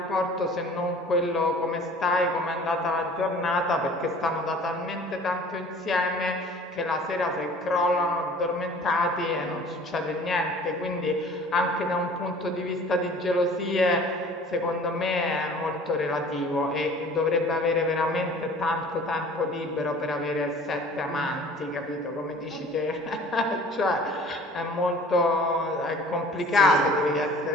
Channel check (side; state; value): both; normal; correlation 0.48